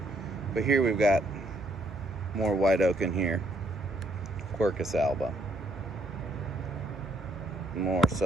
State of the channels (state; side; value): normal; both; correlation 0.71